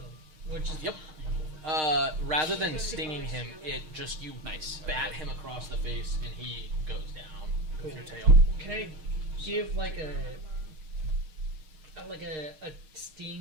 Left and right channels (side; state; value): left; late; 6.5 ms